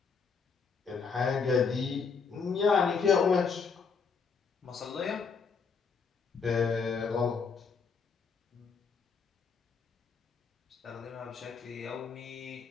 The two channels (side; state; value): right; quieter; 5.5 dB